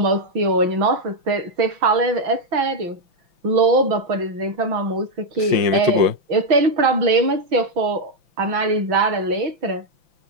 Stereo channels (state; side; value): late; left; 5.9 ms